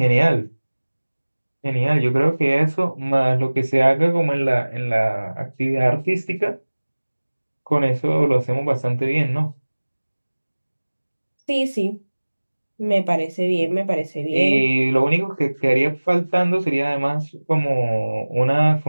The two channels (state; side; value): inverted; both; correlation -1.00